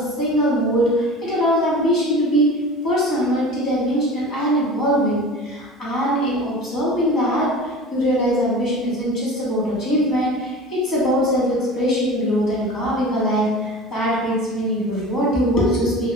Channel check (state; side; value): normal; both; correlation 0.37